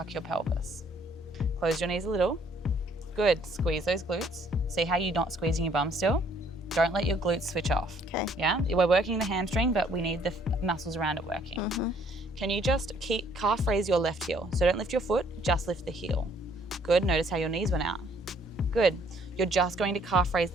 your pelvis. Close your knees a little. Good, squeeze those glutes. See how you're not squeezing your bum still? Don't let your glutes switch off. Okay. Yeah, we're working the hamstring, but we need the muscles around it working. Can you just calf raise your left heel? So don't lift your foot, just lift the heel. Good, notice how your knees went out. Good, you're just going to calf raise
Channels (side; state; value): both; normal; correlation 0.63